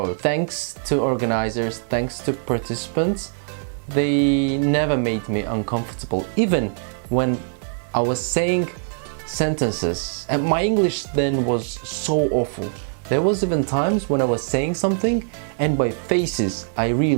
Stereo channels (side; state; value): left; silent; digital silence